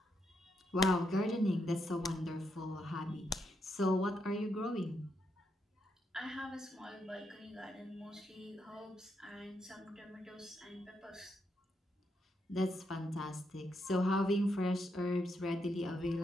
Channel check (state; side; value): normal; both; correlation 0.80